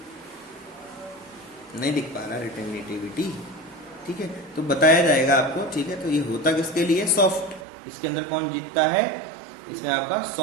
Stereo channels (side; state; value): left; drops out; at 7.7 s